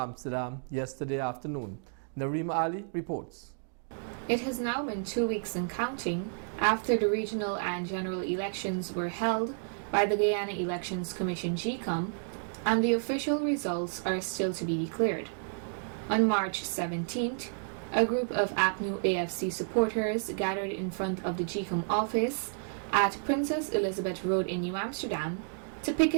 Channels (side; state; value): left; silent; digital silence